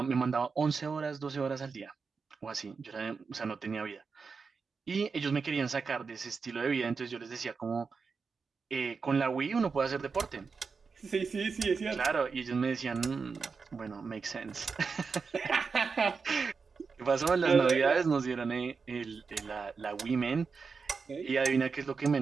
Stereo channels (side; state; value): left; quieter; 5.1 dB